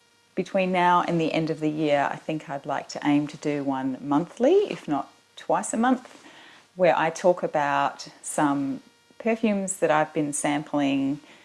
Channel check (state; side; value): identical; both; correlation 1.00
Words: between now and the end of the year, I think I'd like to aim to do one monthly, if not twice a month, where I talk about some perfumes that I've been sampling